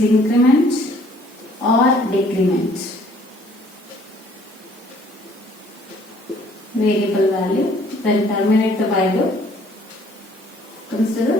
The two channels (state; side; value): normal; both; correlation 0.59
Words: increment or decrement variable value, then terminate the while loop, comes to the